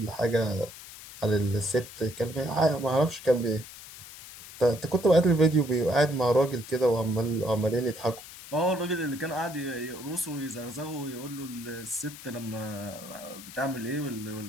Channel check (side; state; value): left; noise; hiss, 15 dB below the sound